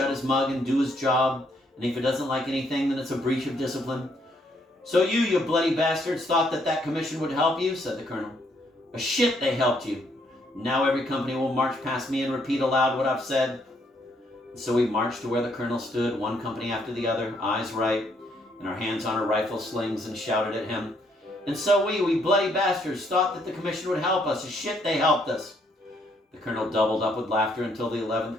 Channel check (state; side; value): normal; both; correlation 0.70